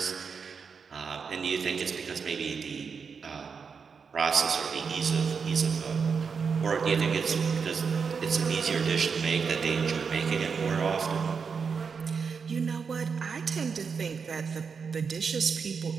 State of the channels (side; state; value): left; quieter; 5.8 dB